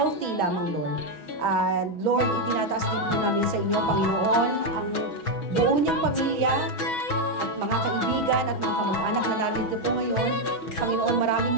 lamang, Lord. And Lord, itinataas din po namin sa inyo, Panginoon, ang buo niyang pamilya at mga kaibigan at mga kamag-anak na narito po ngayon. Panginoon,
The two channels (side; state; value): right; late; 6.2 ms